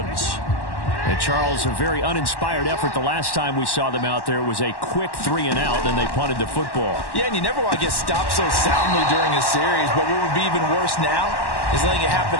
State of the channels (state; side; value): late; right; 1.1 ms